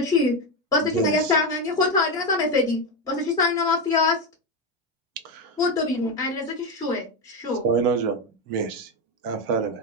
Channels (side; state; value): both; normal; correlation 0.11